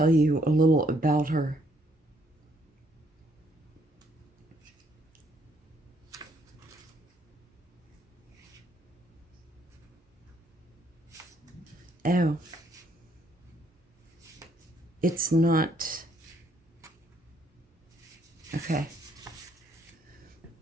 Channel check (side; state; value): both; normal; correlation 0.69